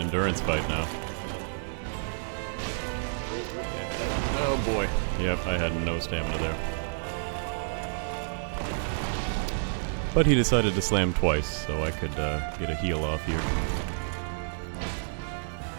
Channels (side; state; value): left; silent; 58 dB below the other